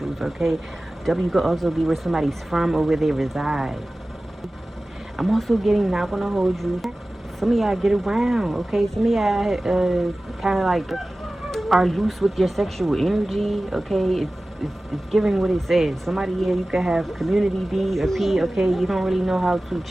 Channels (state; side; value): normal; both; correlation 0.97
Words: okay? W could also be where somebody's from or where they reside. I'm also getting, not gonna hold you, some of y'all get around, okay? Some of y'all kind of like are loose with your sexual energy, okay? It's giving what it says. Somebody here, you could have community D or P, okay? You don't really know how to